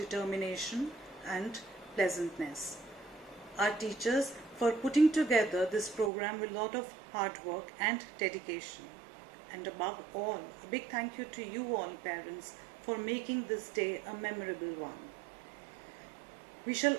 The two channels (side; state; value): left; drops out; at 6.1 s